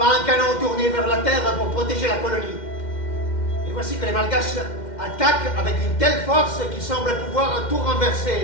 un canon tourné vers la terre pour protéger la colonie. Et voici que les Malgaches attaquent avec une telle force qu'ils semblent pouvoir tout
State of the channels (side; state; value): right; late; 2.1 ms